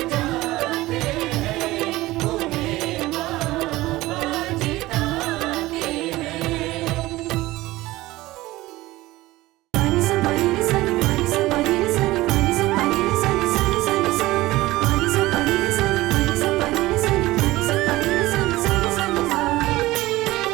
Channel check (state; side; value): quieter; left; 18.3 dB